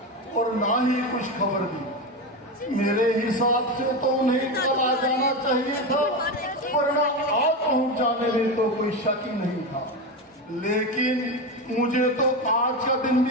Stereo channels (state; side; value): normal; both; correlation 0.17